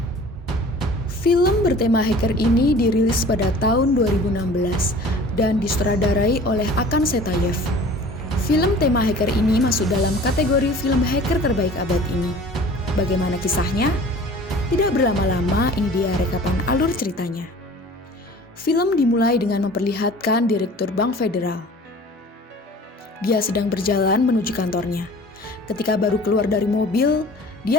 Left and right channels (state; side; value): normal; both; correlation 0.45